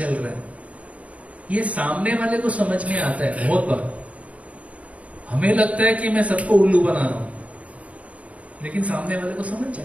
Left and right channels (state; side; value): late; left; 0.067 ms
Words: रहा है, ये सामने वाले को समझ में आता है। बहुत बार हमें लगता है कि मैं सबको उल्लू बना रहा हूं, लेकिन सामने वाले को समझ